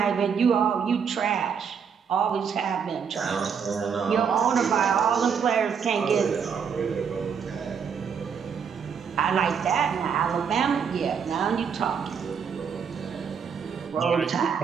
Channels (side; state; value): left; quieter; 6.8 dB